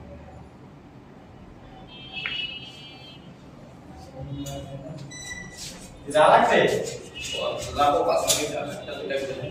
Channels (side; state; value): both; identical; correlation 1.00